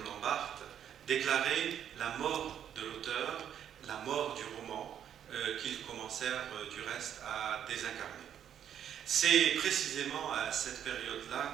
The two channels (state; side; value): quieter; left; 9.4 dB